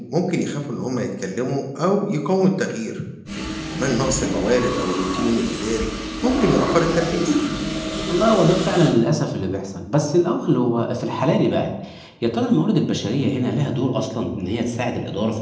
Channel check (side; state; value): both; identical; correlation 1.00